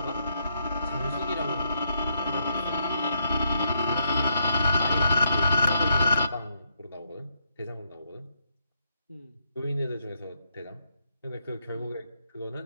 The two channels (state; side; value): inverted; both; correlation -0.76